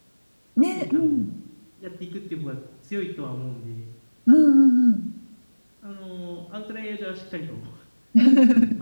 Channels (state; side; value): inverted; both; correlation -1.00